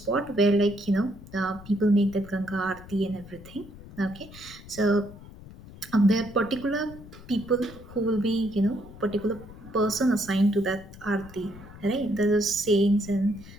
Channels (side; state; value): left; noise; rumble, 17 dB below the sound